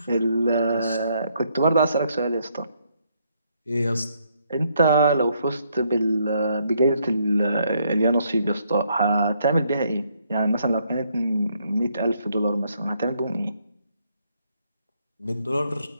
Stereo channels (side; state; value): both; inverted; correlation -0.72